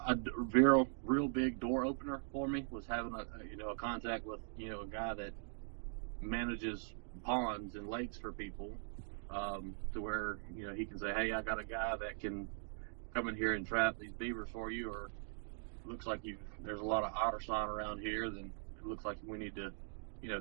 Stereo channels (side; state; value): left; silent; digital silence